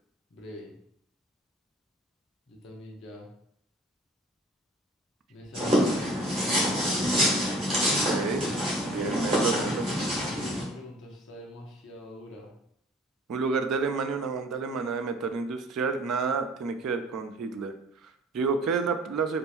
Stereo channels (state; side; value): normal; both; correlation 0.49